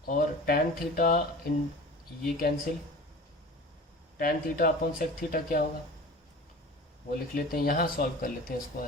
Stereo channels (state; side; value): normal; both; correlation 0.38